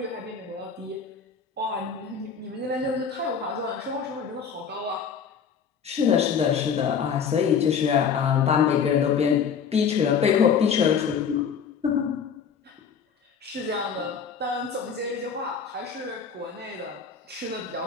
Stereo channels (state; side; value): quieter; right; 6.7 dB